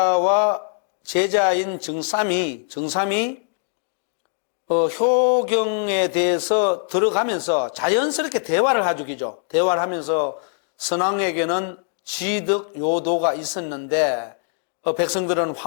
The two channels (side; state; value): right; silent; 64 dB below the other